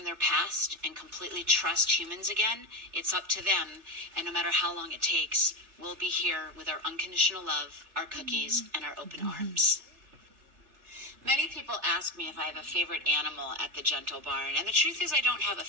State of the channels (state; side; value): late; left; 3.3 ms